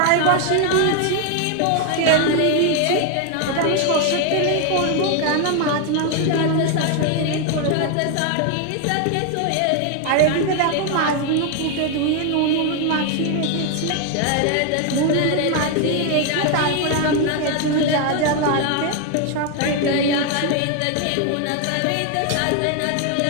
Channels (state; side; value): different; both; correlation 0.01